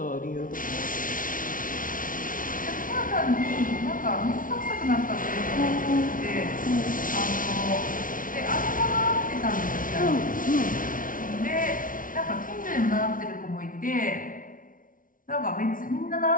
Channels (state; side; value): late; right; 0.39 ms